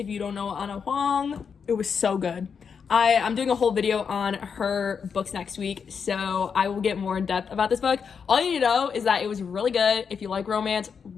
you don't know Anna Huang, it was so good. I'm doing a whole video on her books next week, so I will get more in depth about this book. All you need to know is that it was really good. If you like romance,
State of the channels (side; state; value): right; quieter; 6.4 dB